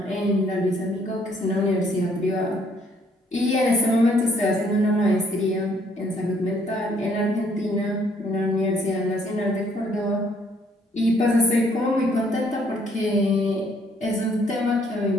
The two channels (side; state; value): both; normal; correlation 0.65